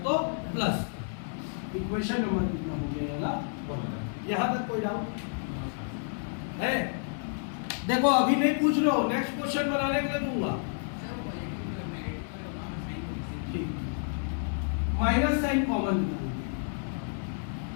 तो प्लस का। इक्वेशन नंबर कितना हो गया? 1। यहाँ तक कोई डाउट है? देखो अभी नहीं पूछ रहे हो, नेक्स्ट क्वेश्चन बनाने के लिए दूंगा। ठीक, माइनस साइन कॉमन निकालेंगे।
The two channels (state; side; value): silent; right; 58 dB below the other